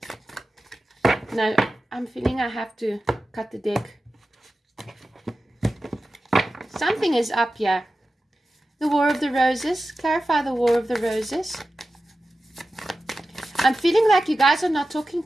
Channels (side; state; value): both; normal; correlation 0.94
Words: No, I'm feeling I have to cut the deck. Something is up here. The War of the Roses. Clarify the War of the Roses. I'm feeling like you guys are not talking